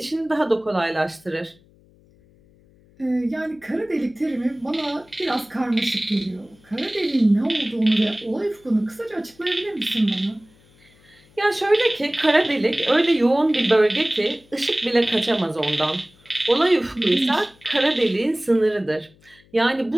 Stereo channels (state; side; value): noise; left; hum, 30 dB below the sound